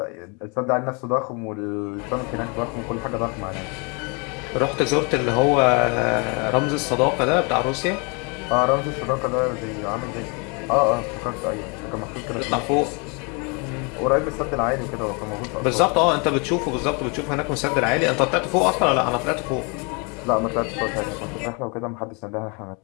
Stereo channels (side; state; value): right; quieter; 32.9 dB